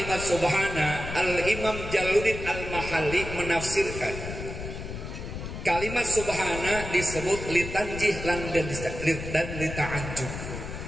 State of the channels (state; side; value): noise; left; rumble, 8 dB below the sound